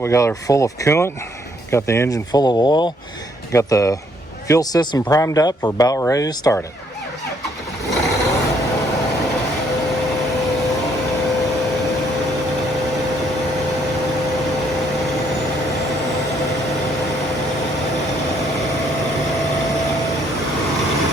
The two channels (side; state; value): both; normal; correlation 0.68